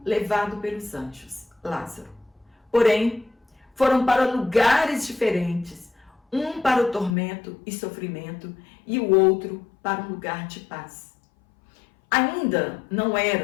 levado pelos anjos, Lázaro. Porém, foram para lugares diferentes, um para o tormento e sofrimento e o outro para um lugar de paz. Ainda não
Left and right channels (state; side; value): drops out; right; at 7.2 s